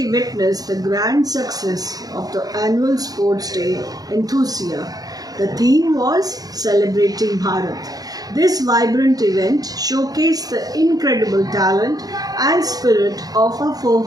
witnessed the grand success of the annual Sports Day Enthusia. The theme was Celebrating Bharat. This vibrant event showcased the incredible talent and spirit of our four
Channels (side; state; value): left; late; 0.18 ms